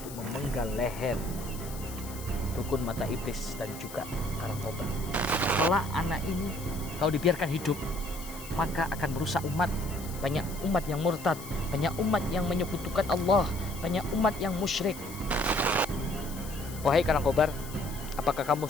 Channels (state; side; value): noise; left; hiss, 14 dB below the sound